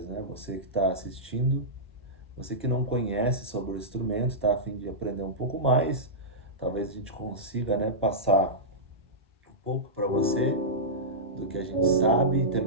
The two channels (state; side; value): normal; both; correlation -0.14